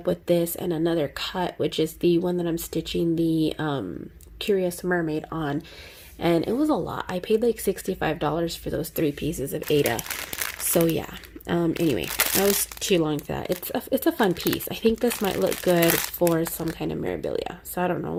with this and another cut, which is the one that I'm stitching the Curious Mermaid on. And it was a lot. I paid like $65 for those 3 pieces of Ada. So yeah. Anyway, that was too long for that. It's a fun piece. I think this might look good for some kind of memorabilia. So I don't know.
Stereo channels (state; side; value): identical; both; correlation 1.00